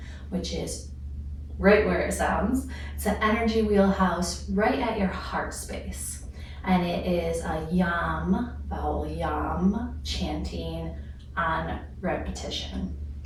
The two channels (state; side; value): identical; both; correlation 1.00